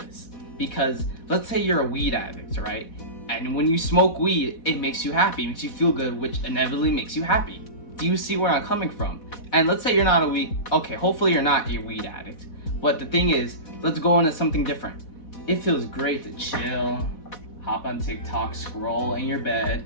Because let's say you're a weed addict, right? And when you smoke weed, it makes you happy, it makes you feel good, which inevitably makes you happy. Do you see where I'm coming from? And let's say you're not hopefully you're not a weed addict. But the thing is, let's go into something different. It feels great to chill, hop on TikTok, scroll in your bed,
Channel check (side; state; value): right; late; 4.1 ms